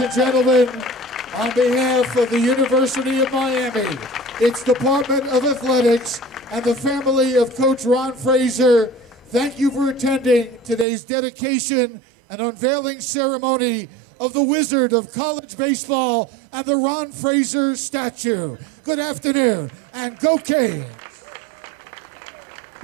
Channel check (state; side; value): drops out; left; at 10.9 s